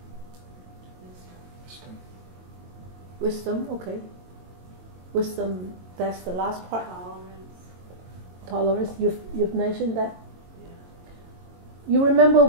Wisdom. Okay. Wisdom. That's the last part. Tolerance. You've mentioned that. Yeah. You remember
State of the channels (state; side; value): late; left; 22 ms